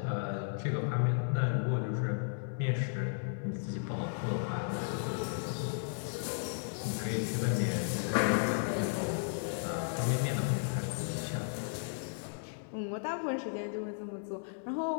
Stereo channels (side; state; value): right; silent; digital silence